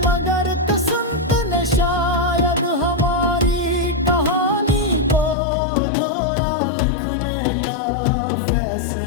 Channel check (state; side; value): drops out; right; at 5.4 s